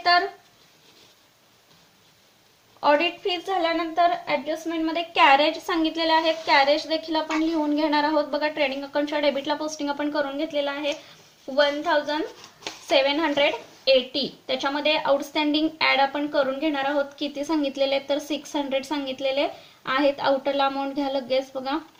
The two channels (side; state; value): both; identical; correlation 1.00